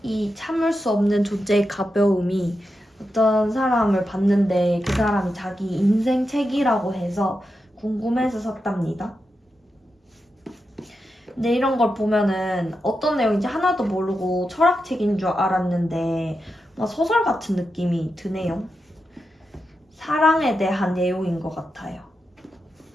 이 참을 수 없는 존재의 가벼움이 어떤 사람을 봤는데 그 사람이 자기 인생 책이라고 해서 궁금해서 샀답니다. 근데 이런 걸 보면은 어떤 내용인지 하나도 모르고 철학책인 줄 알았는데 막 소설 같은 느낌이 드네요. 사랑에 대한 내용인 것 같아요.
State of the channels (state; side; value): normal; both; correlation 0.88